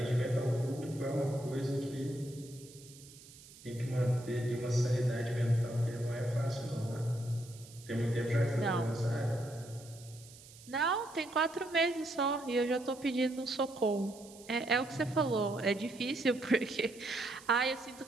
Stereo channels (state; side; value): noise; right; hiss, 20 dB below the sound